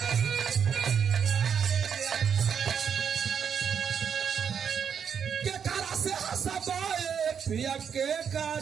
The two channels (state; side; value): quieter; left; 7.4 dB